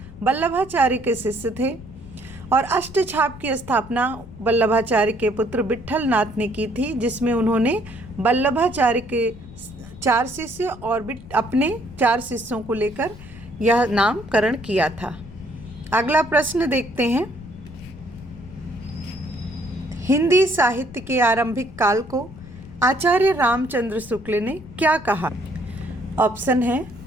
वल्लभाचार्य के शिष्य थे, और अष्टछाप की स्थापना वल्लभाचार्य के पुत्र विट्ठल नाथ ने की थी, जिसमें उन्होंने वल्लभाचार्य के 4 शिष्य और अपने 4 शिष्यों को लेकर यह नामकरण किया था। अगला प्रश्न देखते हैं। हिंदी साहित्य के आरंभिक काल को आचार्य रामचंद्र शुक्ल ने क्या कहा? ऑप्शन है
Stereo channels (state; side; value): noise; left; rumble, 17 dB below the sound